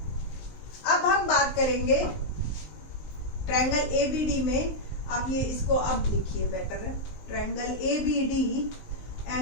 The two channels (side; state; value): right; late; 19 ms